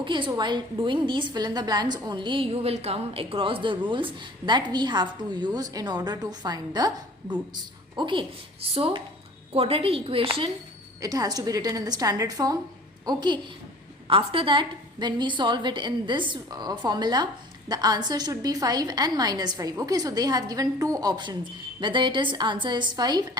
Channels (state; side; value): normal; both; correlation 0.46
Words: so while doing these fill in the blanks only, you will come across the rules that we have to use in order to find the roots. Okay, so quadratic equation, it has to be written in the standard form. Okay, after that when we solve it in this formula, the answer should be 5 and minus 5. Okay, so they have given two options, whether it is answer is 5